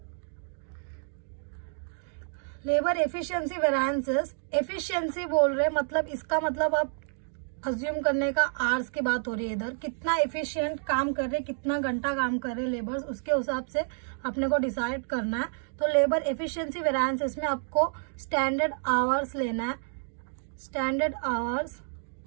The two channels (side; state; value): left; silent; digital silence